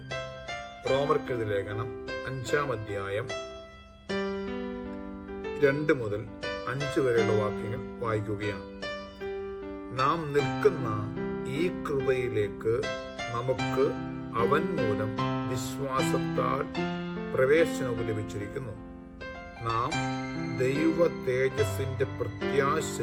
റോമർക്കെഴുതിയ ലേഖനം 5-ാം അധ്യായം 2 മുതൽ 5 വരെയുള്ള വാക്യങ്ങൾ വായിക്കുകയാണ്. നാം നിൽക്കുന്ന ഈ കൃപയിലേക്ക് നമുക്ക് അവൻ മൂലം വിശ്വാസത്താൽ പ്രവേശനവും ലഭിച്ചിരിക്കുന്നു. നാം ദൈവ തേജസ്സിന്റെ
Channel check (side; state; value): both; identical; correlation 1.00